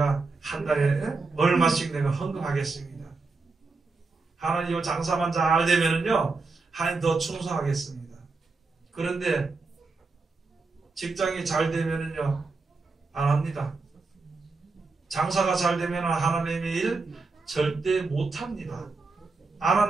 한 달에 얼마씩 내가 헌금하겠습니다. 하나님 요 장사만 잘 되면은요 하나님 더 충성하겠습니다. 그런데 직장이 잘 되면은요 안 합니다. 장사가 잘 되면 하나님의 일 절대 못 합니다. 안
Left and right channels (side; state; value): left; quieter; 4.0 dB